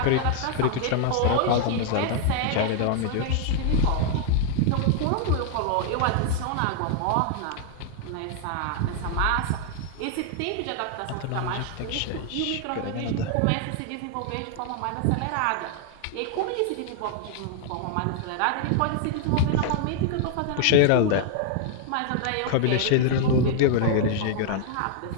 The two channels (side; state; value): both; different; correlation 0.00